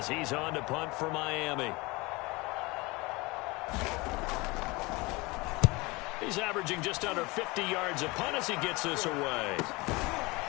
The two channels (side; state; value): right; quieter; 24.1 dB